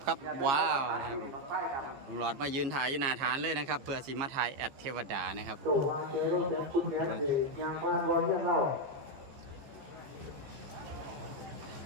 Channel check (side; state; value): left; late; 15 ms